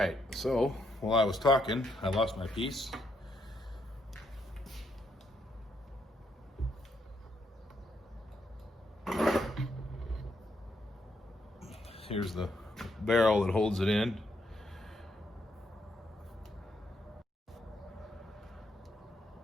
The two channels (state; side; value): normal; both; correlation 0.76